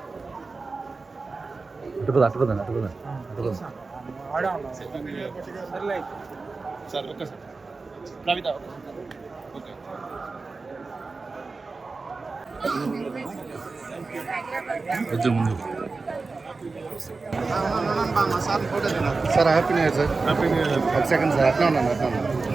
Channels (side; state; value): left; quieter; 4.0 dB